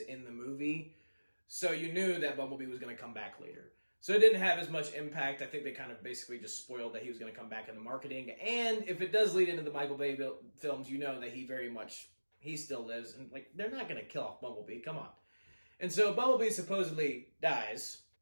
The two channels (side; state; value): both; inverted; correlation -1.00